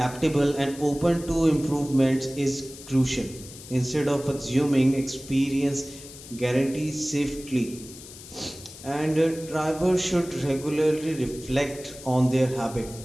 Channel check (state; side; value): noise; left; hiss, 16 dB below the sound